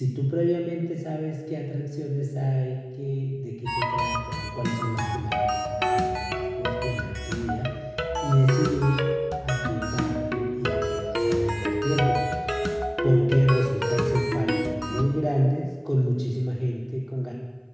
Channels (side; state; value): both; identical; correlation 1.00